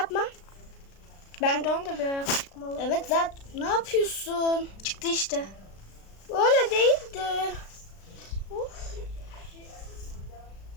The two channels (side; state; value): right; late; 36 ms